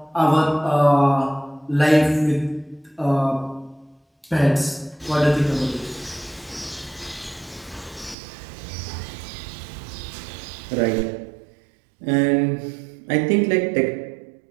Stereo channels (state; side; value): drops out; left; at 8.2 s